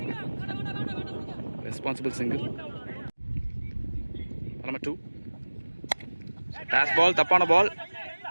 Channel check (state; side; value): inverted; both; correlation -1.00